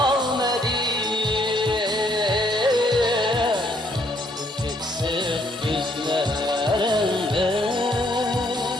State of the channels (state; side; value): normal; both; correlation 0.68